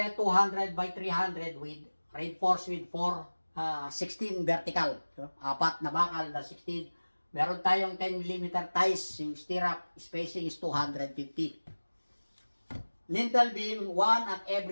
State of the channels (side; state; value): both; inverted; correlation -1.00